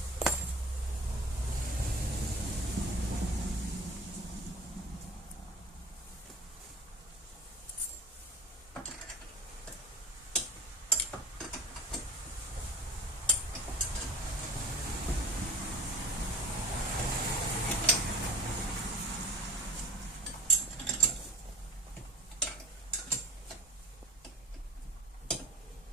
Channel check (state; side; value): normal; both; correlation 0.38